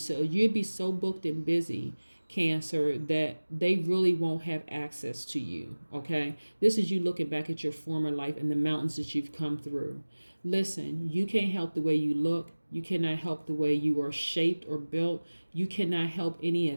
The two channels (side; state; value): both; inverted; correlation -1.00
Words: you'd be so booked and busy, Cancer, that they really won't have access to you. Okay, this is you looking back at your former life and the mountains that you've come through. Listen, you can't help the way you look. You cannot help the way you are shaped or built. You cannot help any